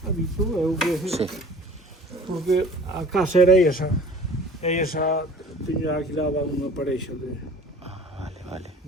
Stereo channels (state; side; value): normal; both; correlation 0.45